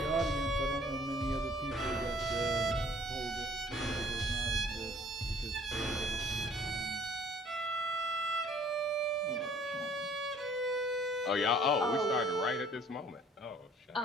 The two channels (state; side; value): normal; both; correlation 0.56